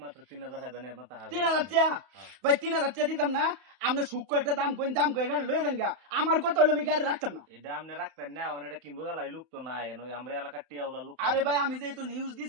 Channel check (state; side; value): late; left; 31 ms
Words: মাত্র 3000 হাজার মাথা 3000 টাকা ভাই 3000 টাকা দিতাম না আপনি সূক্ষ্ম একটা দাম কই গাড়ি লয়ে দেন গা আমার কথা হলো আমি গাড়ি রাখতাম না এটা আপনি রাখতেন না এটা কিনবো গেলাই লোক তো নাই আমরা এলাকার টিয়াওলা লোক আরে ভাই আমি যেহেতু নিউজ